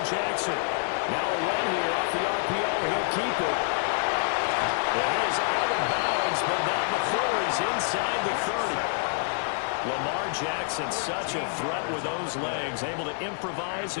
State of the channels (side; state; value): right; silent; 60 dB below the other